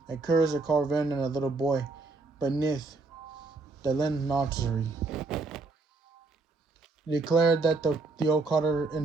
A curse a carven and a little boy, beneath the linen nursery. He declared that the old cotter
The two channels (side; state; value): left; quieter; 3.6 dB